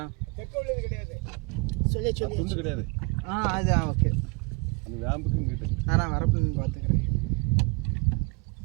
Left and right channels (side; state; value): left; quieter; 31.3 dB